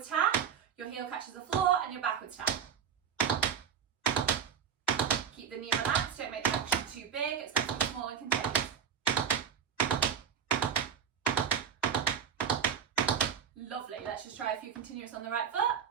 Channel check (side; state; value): left; quieter; 7.8 dB